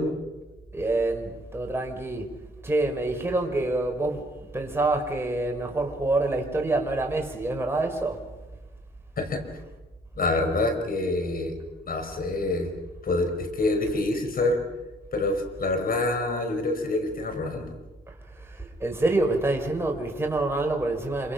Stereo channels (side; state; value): both; normal; correlation 0.61